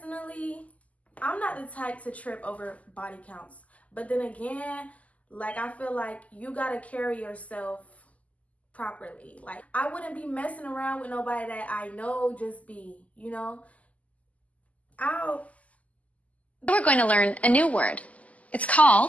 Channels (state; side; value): late; right; 0.072 ms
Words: I'm not the type to trip over body counts. But then again, I feel like you gotta carry yourself properly. Like, I wouldn't be messing around with nobody that I know just be, We're going to learn a new word. It's